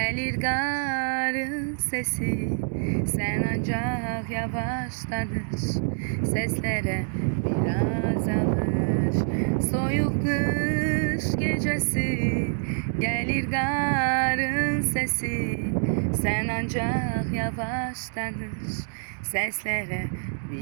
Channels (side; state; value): left; silent; digital silence